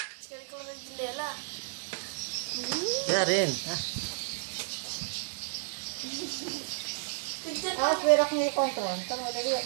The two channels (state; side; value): silent; left; digital silence